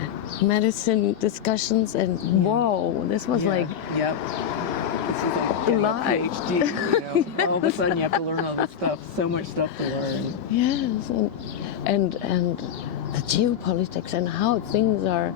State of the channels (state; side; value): quieter; right; 8.7 dB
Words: medicine discussions, and wow, this was like This is like getting a PhD, you know. All of a sudden you have to learn all this stuff, so much stuff to learn. Yes, and the geopolitics and how things are